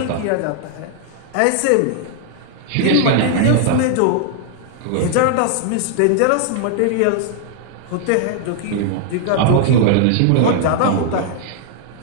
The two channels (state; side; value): different; both; correlation 0.00